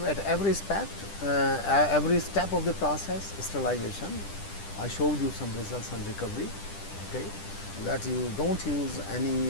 at every step of the process. Sterilization, I showed you some results on recovery. Okay, that you don't use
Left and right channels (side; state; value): right; late; 10 ms